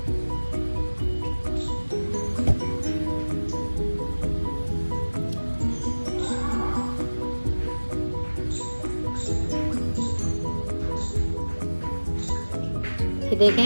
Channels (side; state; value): both; inverted; correlation -1.00